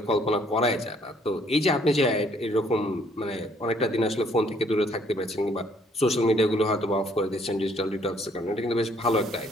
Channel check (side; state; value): both; normal; correlation 0.64